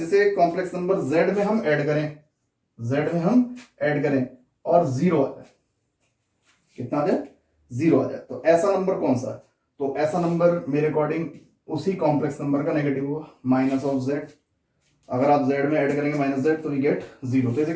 कॉम्प्लेक्स नंबर z में हम ऐड करें, z में हम ऐड करें और 0 आ जाए, कितना आ जाए, 0 आ जाए, तो ऐसा नंबर कौन सा है, तो ऐसा नंबर मेरे अकॉर्डिंग उसी कॉम्प्लेक्स नंबर का नेगेटिव हुआ, माइनस ऑफ z। अगर आप z में ऐड करेंगे माइनस z तो वी गेट 0, तो इसे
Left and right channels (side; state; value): both; identical; correlation 1.00